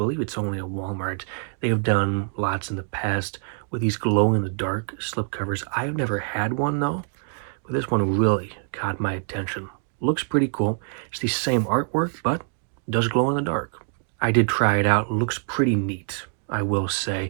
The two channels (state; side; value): silent; left; digital silence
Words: it's only at Walmart. They have done lots in the past with these glow-in-the-dark slipcovers. I've never had one, though. But this one really caught my attention. Looks pretty cool. It's the same artwork, but does glow in the dark. I did try it out. Looks pretty neat, I will